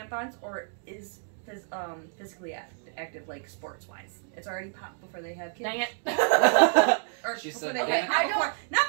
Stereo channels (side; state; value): left; silent; digital silence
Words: or is physically active, like sports-wise. It's already popped before they have kids. Dang it. Or She before said they okay. have, not